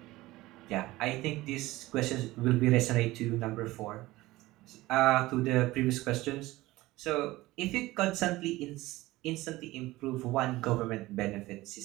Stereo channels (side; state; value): left; quieter; 18.5 dB